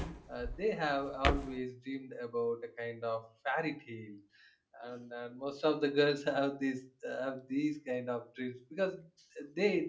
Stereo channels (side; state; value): both; identical; correlation 1.00